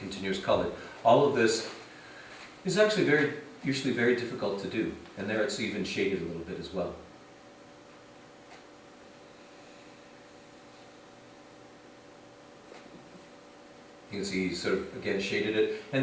color. All of this is actually usually very difficult to do, and there it's even shaded a little bit as well. You can see he's sort of, again, shaded it,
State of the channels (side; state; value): both; identical; correlation 1.00